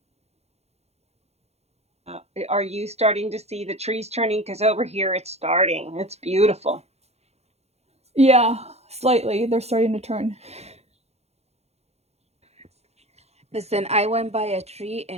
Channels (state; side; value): late; left; 0.31 ms